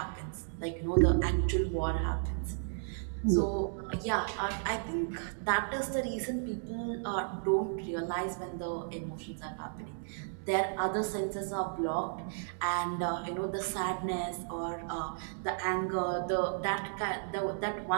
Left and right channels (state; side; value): silent; left; digital silence